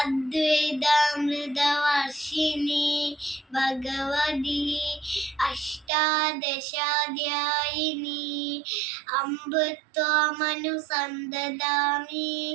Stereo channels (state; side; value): drops out; left; at 5.9 s